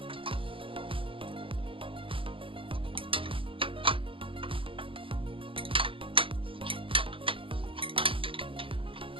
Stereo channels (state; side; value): late; left; 0.25 ms